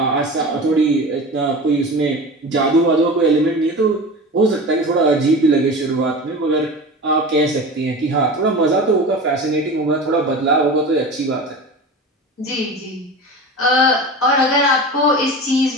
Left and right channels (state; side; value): normal; both; correlation 0.31